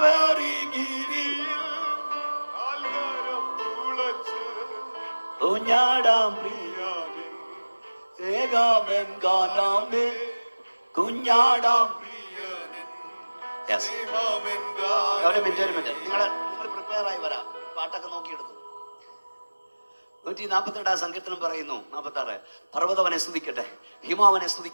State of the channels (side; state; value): both; inverted; correlation -1.00